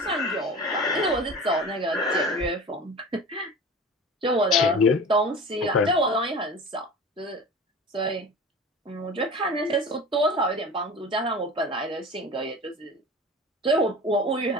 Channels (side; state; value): both; normal; correlation 0.36